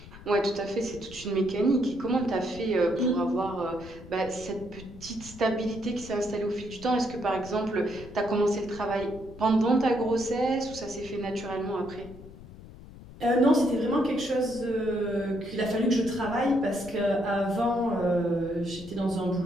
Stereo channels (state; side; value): noise; left; rumble, 17 dB below the sound